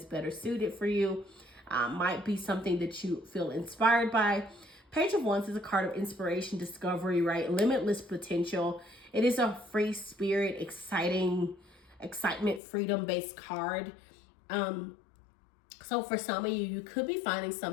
better suited for you. Might be something that you feel inspired by. Page of Wands is a card of inspiration, discovery, right? Limitless potential. It is a free spirit, excitement, freedom-based card. So for some of you, you could be finding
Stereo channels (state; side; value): drops out; right; at 12.6 s